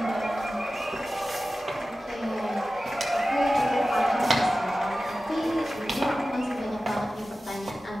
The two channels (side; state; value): both; normal; correlation 0.95